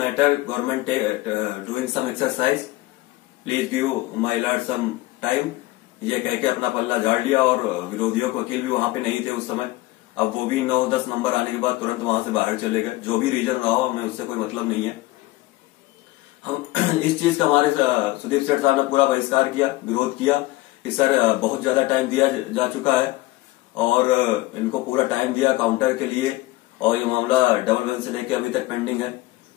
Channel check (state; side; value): quieter; right; 19.0 dB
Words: government doing some exercise, please give my lord some time. ये कह के अपना पल्ला झाड़ लिया और विरोधियों के वकील भी वहां पे नहीं थे उस समय। अब वो भी 9-10 नंबर आने के बाद तुरंत वहां से बाहर चले गए। जो भी रीजन रहा हो, हमें उससे कोई मतलब नहीं है। हम इस चीज का हमारे सुदीप सेठ साहब ने पूरा बहिष्कार किया, विरोध किया कि सर बहुत ज्यादा टाइम दिया जा चुका है और इनको पूरा टाइम दिया काउंटर के लिए, और ये मामला डबल बेंच से लेके अभी तक पेंडिंग है।